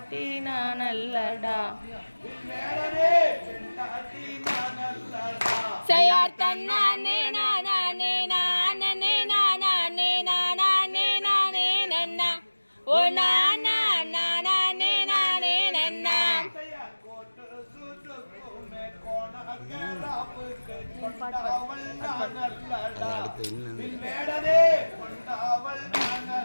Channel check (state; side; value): inverted; both; correlation -1.00